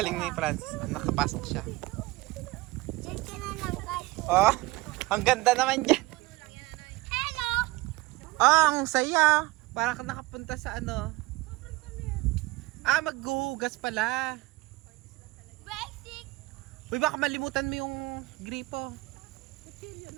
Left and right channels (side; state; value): left; quieter; 20.6 dB